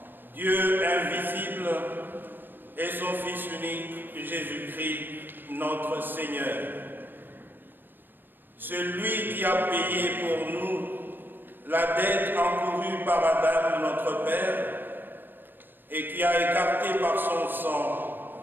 Dieu invisible et son Fils unique, Jésus-Christ, notre Seigneur. Celui qui a payé pour nous la dette encourue par Adam, notre Père, et qui a écarté par son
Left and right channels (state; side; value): late; left; 0.093 ms